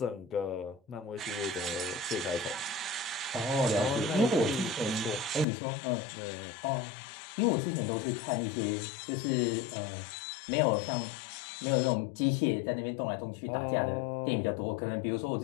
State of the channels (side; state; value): right; drops out; at 5.5 s